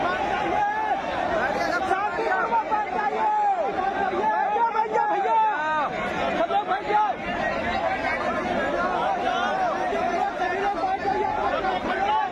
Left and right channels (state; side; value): identical; both; correlation 1.00